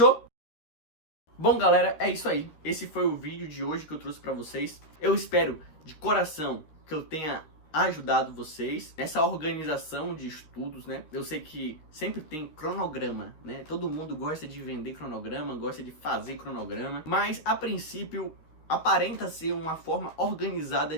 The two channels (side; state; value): right; late; 13 ms